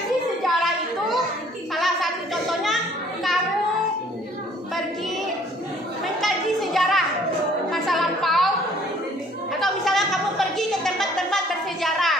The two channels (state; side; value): normal; both; correlation 0.57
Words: sejarah itu salah satu contohnya kamu pergi mengkaji sejarah masa lampau, atau misalnya kamu pergi ke tempat-tempat